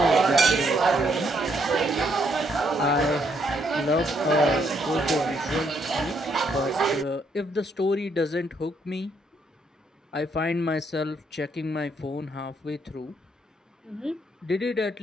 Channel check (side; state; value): both; normal; correlation 0.73